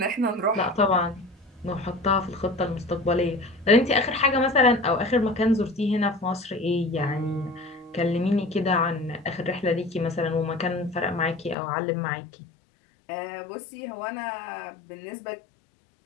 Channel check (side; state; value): right; drops out; at 11.6 s